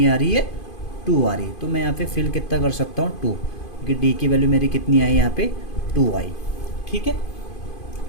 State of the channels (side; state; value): right; late; 2.5 ms